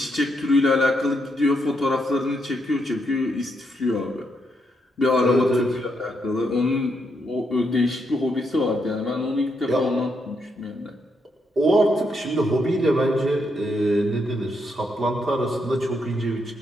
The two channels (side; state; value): both; normal; correlation 0.79